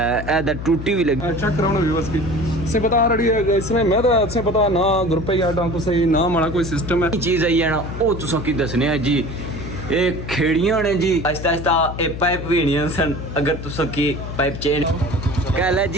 टूटी भी लगी। चेक कराना व्यूअर्स की से बता रही है इसमें मैं तो से पता ना ग्रुप या को सही ना माड़ा कोई सिस्टम है चीज़ आई है ना वो तुसा की दसने है जी। ये खेड़ियां ने जी आहिस्ता आहिस्ता ये पाइप भी नहीं सन अगर तुसा की पाइप चेंज कह ले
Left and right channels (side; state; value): left; noise; hum, 8 dB below the sound